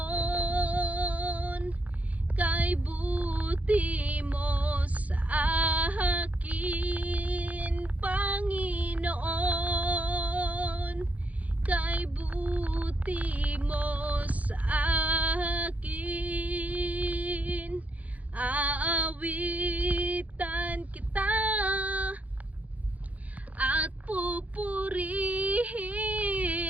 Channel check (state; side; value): late; left; 0.072 ms